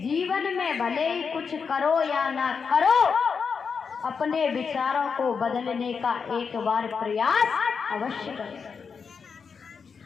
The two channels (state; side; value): quieter; right; 5.8 dB